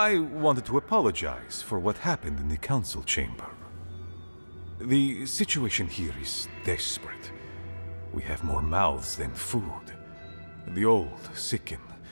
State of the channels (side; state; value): both; inverted; correlation -1.00